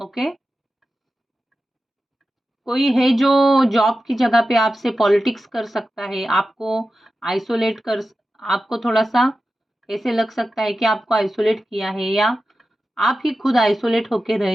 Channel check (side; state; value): both; normal; correlation 0.93